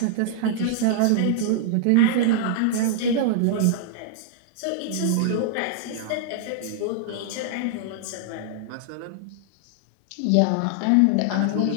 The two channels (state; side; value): different; both; correlation -0.01